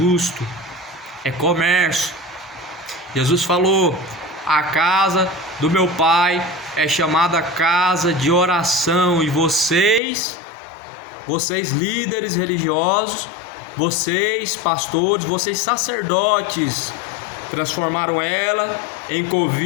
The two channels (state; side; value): drops out; right; at 10.0 s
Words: é comércio. Jesus falou: a casa do meu pai é chamada casa de oração, e vocês líderes religiosos, vocês pastores, vocês sacerdotes, transformaram ela em